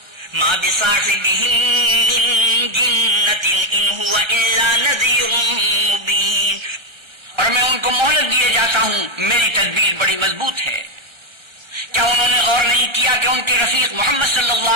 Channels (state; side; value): late; left; 1.3 ms